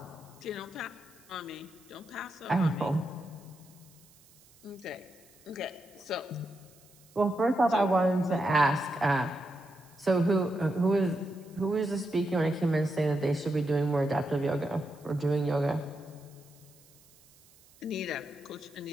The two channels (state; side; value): noise; right; hiss, 27 dB below the sound